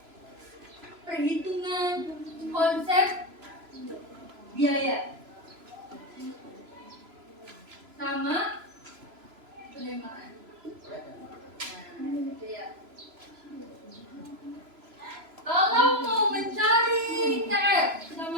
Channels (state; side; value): late; left; 3.0 ms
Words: perhitungan konsep biaya sama penerimaan. Nah, gitu ya. Kalau mau mencari TR